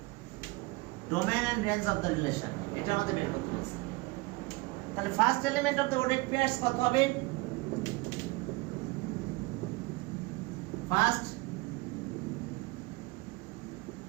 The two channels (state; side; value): quieter; left; 23.9 dB